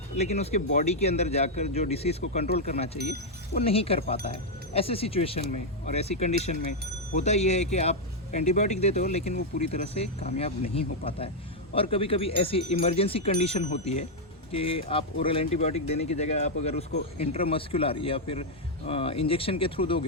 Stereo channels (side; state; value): both; normal; correlation -0.01